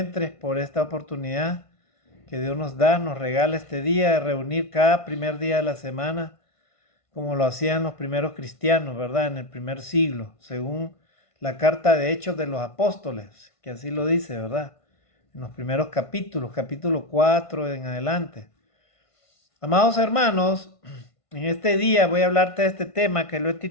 por esta oportunidad que Dios nos da, nos regala este día de reunir cada primer día de la semana, como lo hacían los primeros cristianos, ¿verdad? En el primer siglo, según la carta de Hechos de los Apóstoles, que así lo dice, ¿verdad? En los primeros capítulos, capítulo 4 en adelante. Amados hermanos, en este día voy a hablarte de este tema que lo he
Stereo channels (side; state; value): right; late; 1.5 ms